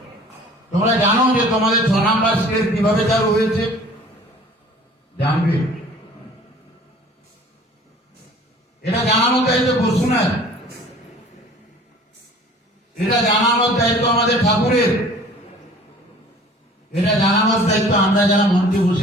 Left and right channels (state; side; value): normal; both; correlation 0.48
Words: তোমরা জানো যে তোমাদের 6 নম্বর স্কেল কিভাবে চালু হয়েছে? জানবে? এটা জানানোর দায়িত্ব বসুনের, এটা জানানোর দায়িত্ব আমাদের ঠাকুরের, এটা জানানোর দায়িত্ব আমরা যারা মঞ্চে